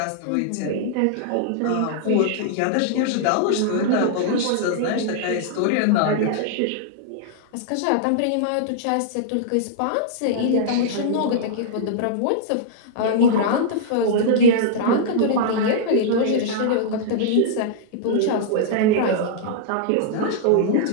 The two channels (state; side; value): different; both; correlation -0.02